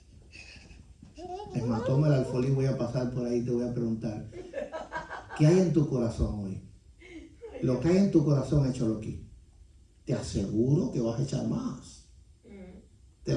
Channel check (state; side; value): identical; both; correlation 1.00